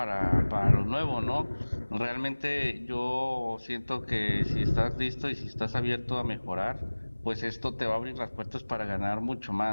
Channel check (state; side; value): inverted; both; correlation -1.00